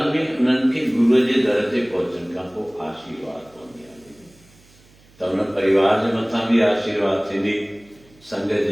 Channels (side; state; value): right; noise; hum, 29 dB below the sound